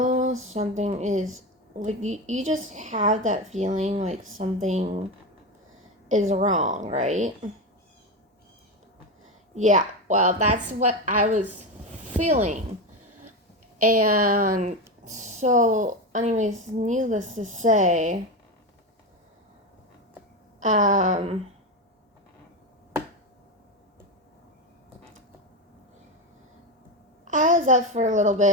something is, you just have that feeling like something is wrong, right? Yeah, well, that's what I was feeling. And so, anyways, needless to say, I was up for a little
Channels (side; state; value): both; normal; correlation 0.16